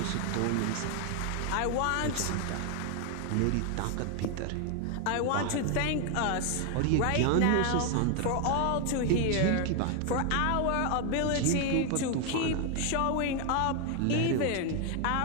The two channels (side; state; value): both; different; correlation 0.01